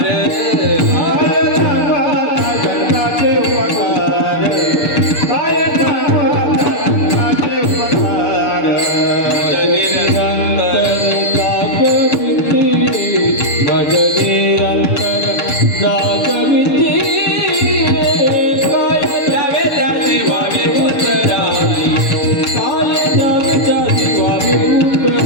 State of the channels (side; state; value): right; late; 7.0 ms